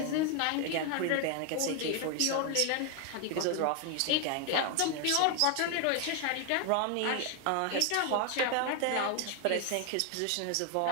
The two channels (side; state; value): both; different; correlation 0.00